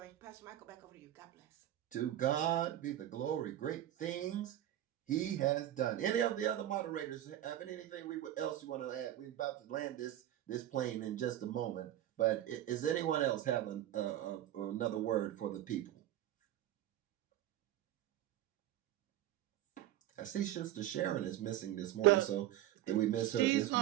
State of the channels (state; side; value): quieter; left; 12.8 dB